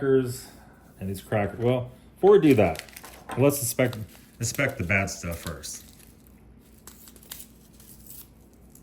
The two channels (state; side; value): identical; both; correlation 1.00